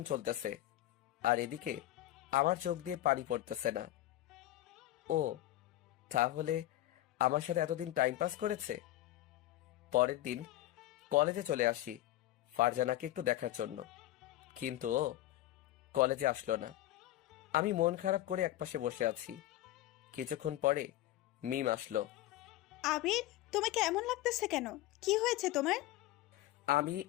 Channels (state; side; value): quieter; right; 15.0 dB